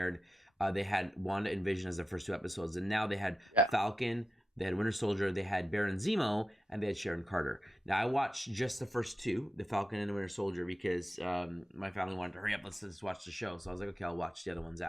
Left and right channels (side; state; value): both; normal; correlation 0.90